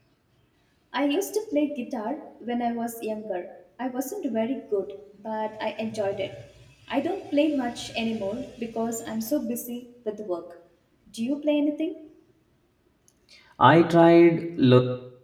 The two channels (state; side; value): identical; both; correlation 1.00